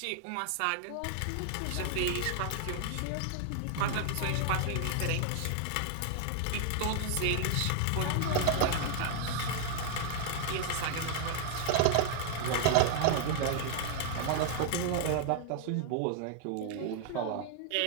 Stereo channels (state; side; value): different; both; correlation 0.00